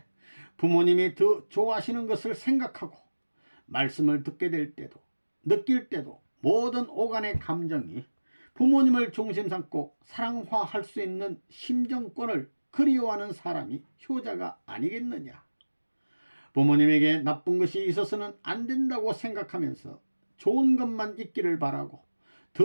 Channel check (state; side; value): inverted; both; correlation -1.00